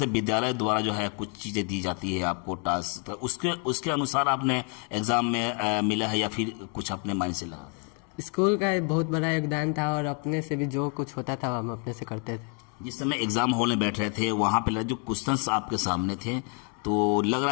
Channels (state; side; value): quieter; right; 37.8 dB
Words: विद्यालय द्वारा जो है कुछ चीज़ें दी जाती है आपको टास्क, उसके अनुसार आपने एग्ज़ाम में मिला है या फिर कुछ अपने माइंड से लगा? स्कूल का बहुत बड़ा योगदान था और अपने से भी जो कुछ होता था हम अपने से करते थे। जिस समय एग्जाम हॉल में बैठ रहे थे वहाँ पे जो क्वेश्चंस आपके सामने थे तो लग